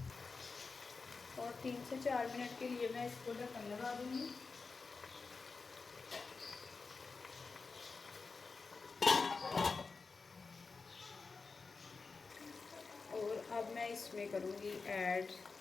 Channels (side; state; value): right; quieter; 4.5 dB